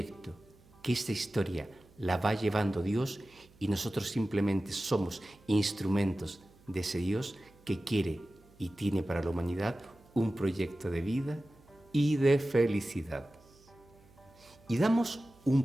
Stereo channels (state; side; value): noise; right; hum, 27 dB below the sound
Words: que esta historia la va llevando Dios y nosotros simplemente somos instrumentos de ese Dios que quiere y tiene para la humanidad un proyecto de vida, y de felicidad. Y damos un